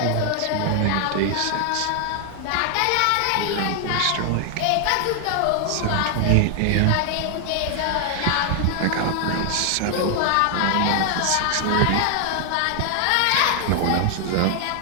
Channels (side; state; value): both; different; correlation 0.00